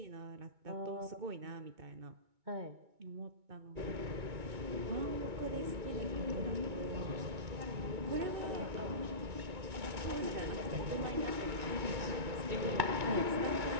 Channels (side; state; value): left; late; 2.2 ms